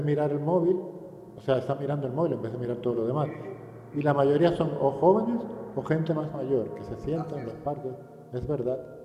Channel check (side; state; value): both; identical; correlation 1.00